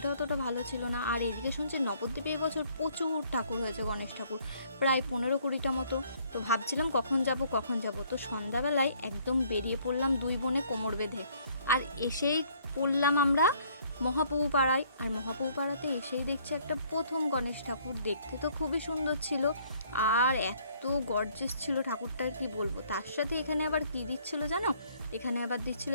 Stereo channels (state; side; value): inverted; both; correlation -0.63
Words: অতটা ভালো ছিল না, আর এইদিকে শুনছি নবদ্বীপে এবছর প্রচুর ঠাকুর হয়েছে গণেশ ঠাকুর, প্রায় 15-20টা মতো। তো ভাবছিলাম কখন যাব। তো সন্ধ্যাবেলায় একদম বেরিয়ে পড়লাম দুই বোনে কোমর বেঁধে, আর এসেই পড়লাম আমরা মহাপ্রভু পাড়ায়। আর মহাপ্রভু পাড়াতে এসেই দেখছি একটা প্রথম গণেশ ঠাকুর, দেখতে তো খুবই সুন্দর ছিল, আর এত গর্জিয়াস ছিল ঠাকুরটার কি বলবো। তার সাথে এখানে আবার কি দিচ্ছিল জানো, এখানে আবার দিচ্ছিল